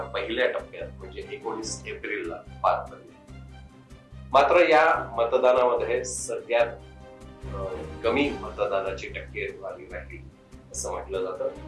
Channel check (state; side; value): identical; both; correlation 1.00